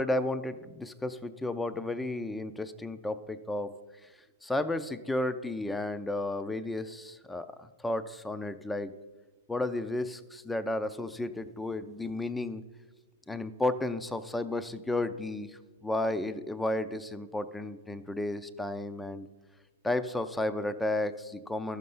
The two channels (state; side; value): normal; both; correlation 0.76